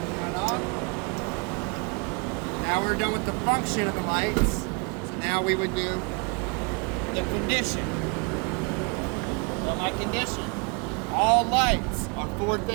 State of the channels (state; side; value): quieter; left; 32.2 dB